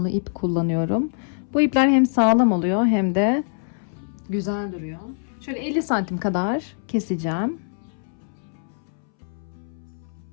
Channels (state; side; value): silent; right; 63 dB below the other